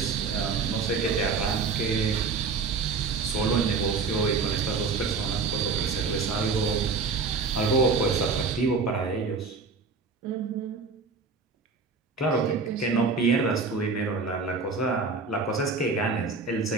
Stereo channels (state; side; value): quieter; left; 4.6 dB